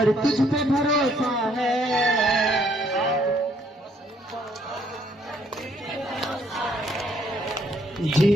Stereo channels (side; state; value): both; normal; correlation 0.67